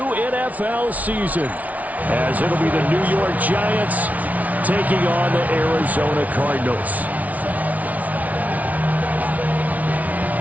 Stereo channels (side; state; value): left; late; 0.071 ms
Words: NFL season, as it'll be the New York Giants taking on the Arizona Cardinals.